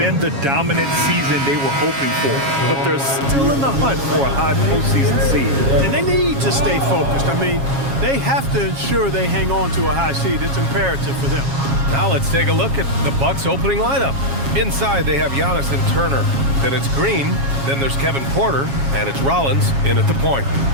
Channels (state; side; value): late; left; 7.3 ms